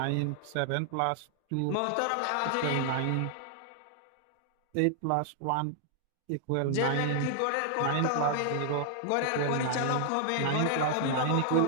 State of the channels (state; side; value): different; both; correlation -0.01